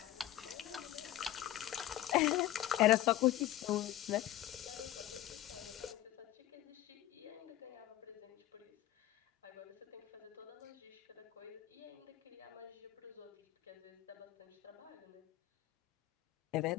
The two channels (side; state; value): right; quieter; 14.1 dB